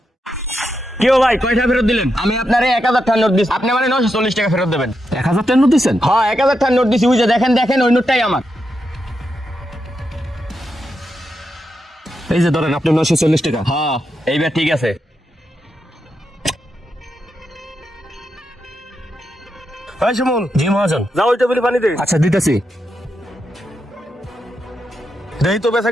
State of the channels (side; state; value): both; normal; correlation 0.85